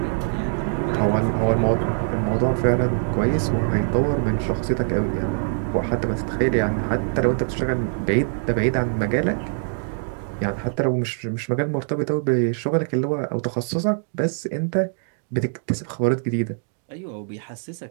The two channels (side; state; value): left; silent; digital silence